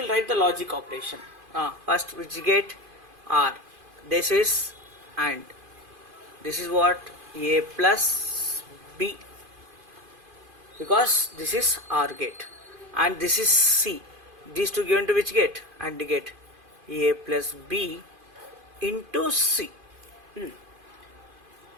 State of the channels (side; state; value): left; late; 2.5 ms